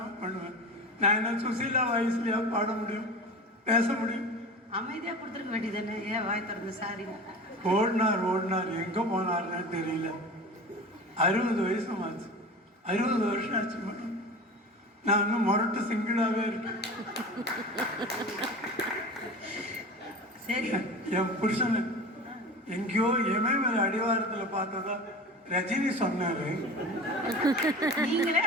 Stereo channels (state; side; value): normal; both; correlation 0.33